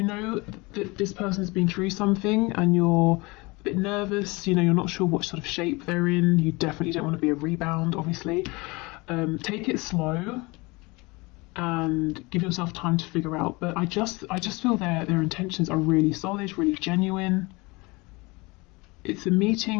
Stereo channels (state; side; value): quieter; right; 25.0 dB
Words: know that this person's been through something and you're a bit nervous, you know, you're not sure what sort of shape they're in, you definitely don't want to be a rebound, obviously. Take it slow and give yourself time to figure out. But I just feel their intentions are really solid, really genuine. It's a